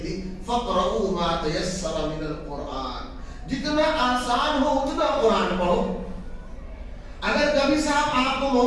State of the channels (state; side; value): identical; both; correlation 1.00